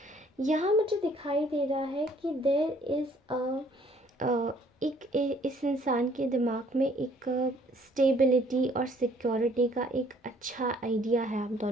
यहाँ मुझे दिखाई दे रहा है कि देयर इज़ इस इंसान के दिमाग में एक स्टेबिलिटी और सिक्योरिटी का एक अच्छा आइडिया है आप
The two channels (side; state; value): both; normal; correlation 0.60